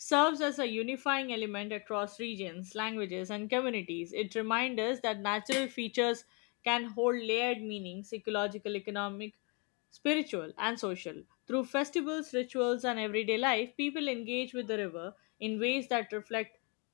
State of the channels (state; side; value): quieter; right; 33.2 dB